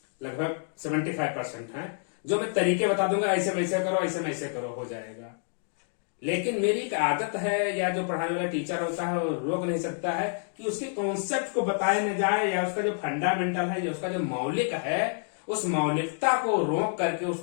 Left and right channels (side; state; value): right; silent; 59 dB below the other